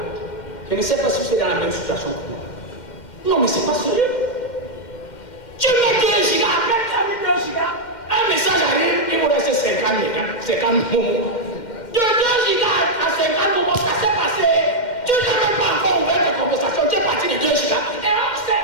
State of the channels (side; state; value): right; late; 2.1 ms